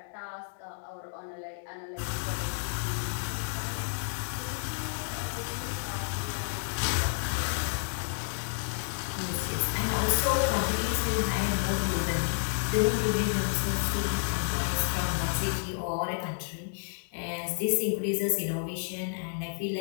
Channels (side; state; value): right; silent; digital silence